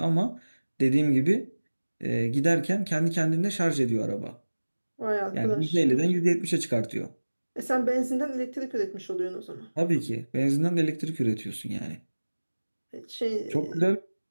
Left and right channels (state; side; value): inverted; both; correlation -1.00